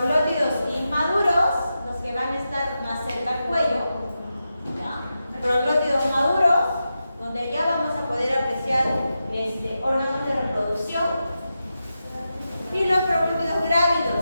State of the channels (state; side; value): inverted; both; correlation -0.90